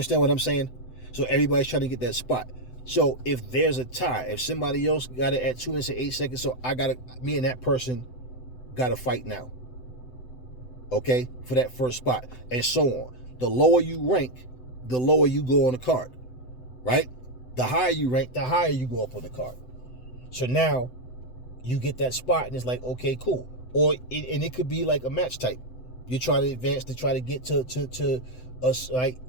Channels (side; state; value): right; late; 7.9 ms